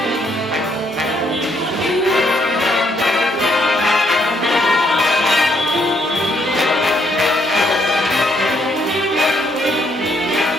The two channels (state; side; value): normal; both; correlation 0.71